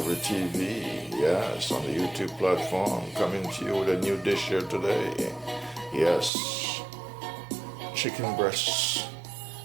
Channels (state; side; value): drops out; left; at 6.3 s